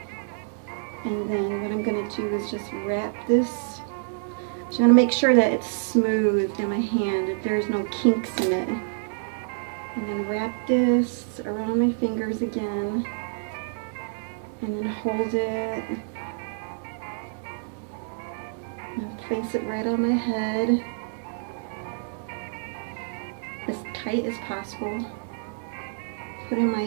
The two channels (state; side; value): silent; left; digital silence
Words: And then what I'm going to do is just wrap this. I'm going to make sure that it's smooth in my hand, that there's no kinks in it. And then wrap this around my fingers again. And then hold it. And place it right on my head. As tight as possible. Put in